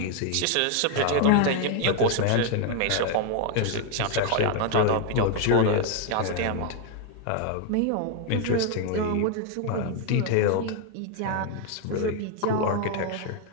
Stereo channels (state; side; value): different; both; correlation 0.01